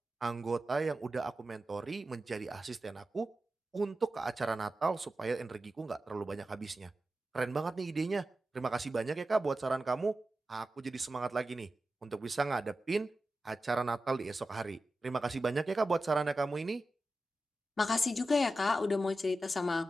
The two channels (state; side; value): normal; both; correlation 0.92